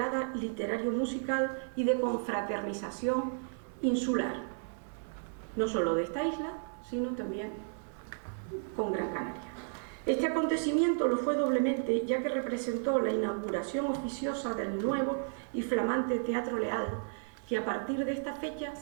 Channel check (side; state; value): left; silent; digital silence